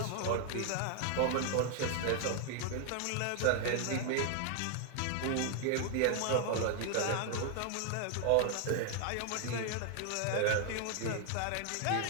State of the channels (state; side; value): different; both; correlation 0.00